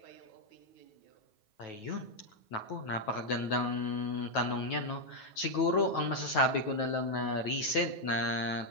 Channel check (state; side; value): late; right; 9.2 ms